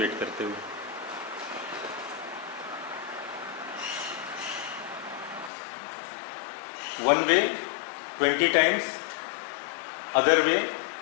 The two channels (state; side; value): drops out; right; at 5.5 s